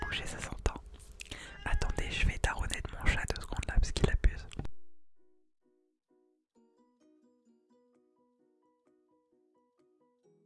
bouché, ça s'entend. Attendez, je vais taronner de mon chat 2 secondes là parce qu'il abuse.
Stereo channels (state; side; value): identical; both; correlation 1.00